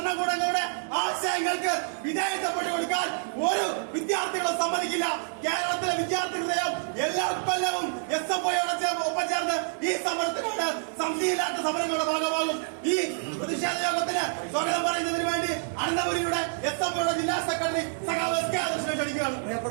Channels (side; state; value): left; silent; 60 dB below the other